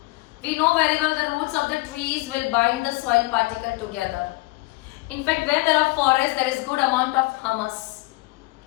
We know very well the roots of the trees will bind the soil particle together. In fact, where there are forests, there is good amount of humus.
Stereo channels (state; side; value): quieter; right; 21.9 dB